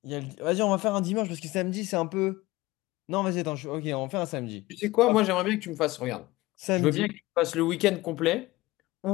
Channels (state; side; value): quieter; right; 19.3 dB